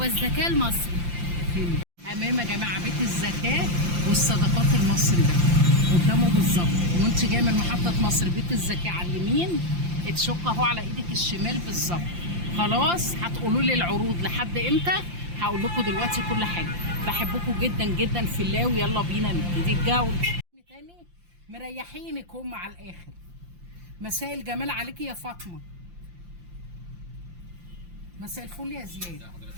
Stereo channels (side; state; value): left; late; 5.8 ms